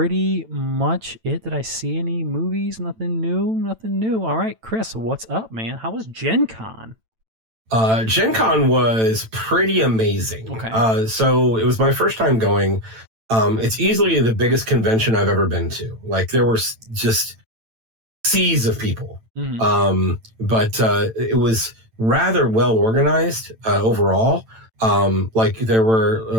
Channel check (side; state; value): left; late; 9.0 ms